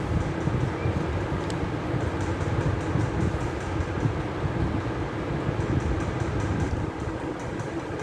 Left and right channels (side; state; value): both; identical; correlation 1.00